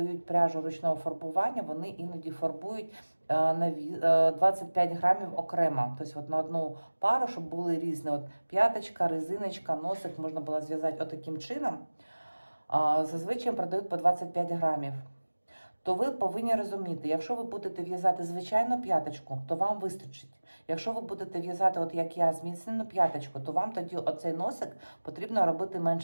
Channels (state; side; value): inverted; both; correlation -1.00